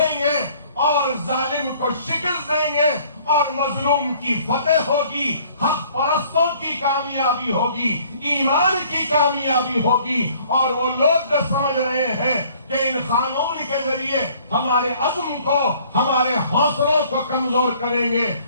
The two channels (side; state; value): both; inverted; correlation -0.57